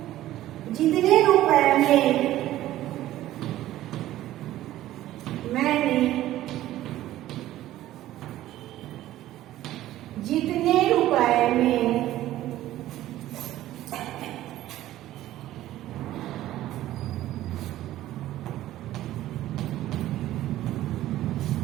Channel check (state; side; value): quieter; left; 14.3 dB